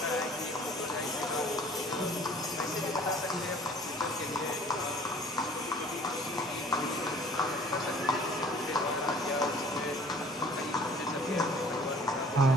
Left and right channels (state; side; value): normal; both; correlation 0.51